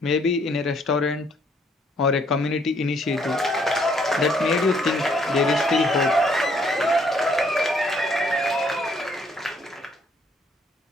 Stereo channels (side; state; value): both; normal; correlation 0.66